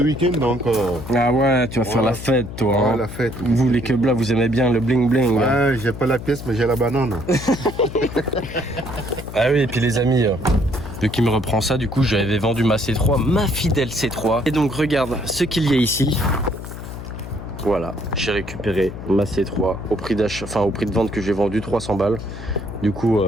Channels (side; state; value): left; noise; hum, 10 dB below the sound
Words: week-end donc. Ah ouais, tu vas faire Ouais. la fête, toi. Ouais, Hein. la fête. Vous, les queblas, vous aimez bien le bling bling. Hein. Ouais, j'ai pas la pièce, mais j'ai la banane. Ah oui, et puis les amis, vu qu'il me reprend ça, du coup, j'avais vendu ma C3, ma fidèle C3. Et donc, regarde ce qu'il y a ici. Voilà, j'ai récupéré ma C3 au prix d'achat, enfin au prix de vente que j'ai vendu 300 balles. Du coup,